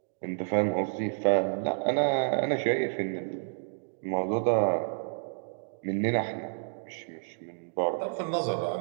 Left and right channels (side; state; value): left; silent; digital silence